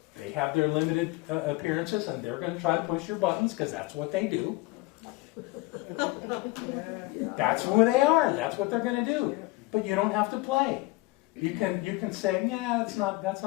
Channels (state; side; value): quieter; right; 21.0 dB